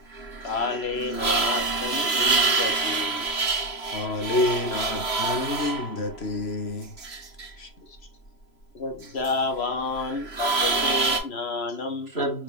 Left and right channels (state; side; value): late; right; 3.0 ms